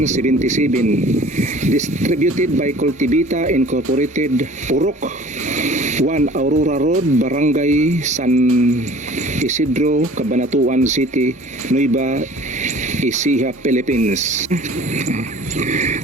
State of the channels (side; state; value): both; normal; correlation 0.47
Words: distributed by Cultivita Incorporated, Urok 1 Aurora Road, Barangay San Isidro, Cabanatuan City, Nueva Ecija, Philippines.